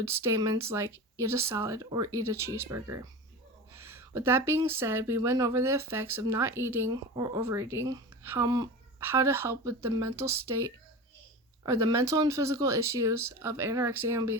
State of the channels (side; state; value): both; normal; correlation 0.30